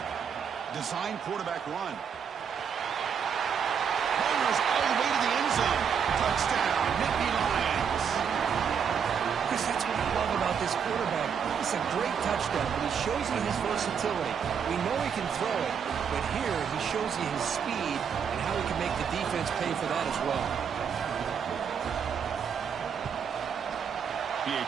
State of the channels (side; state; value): left; quieter; 7.2 dB